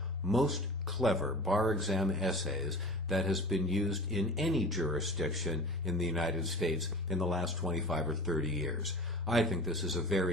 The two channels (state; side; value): normal; both; correlation 0.37